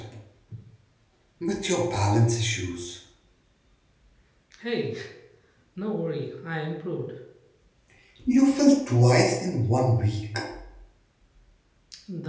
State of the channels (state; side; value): identical; both; correlation 1.00